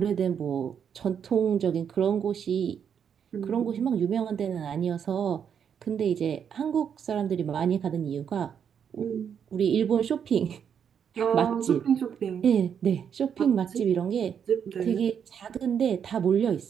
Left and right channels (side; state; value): left; quieter; 7.8 dB